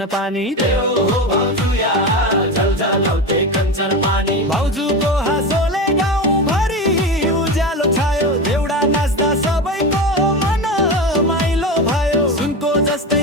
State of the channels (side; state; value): both; normal; correlation 0.22